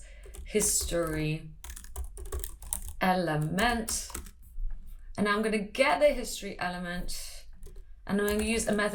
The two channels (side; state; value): both; identical; correlation 1.00